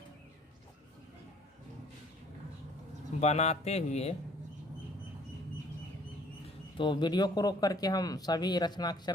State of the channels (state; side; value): normal; both; correlation 0.57